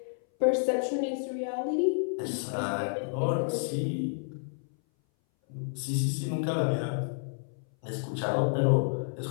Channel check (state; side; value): silent; right; 58 dB below the other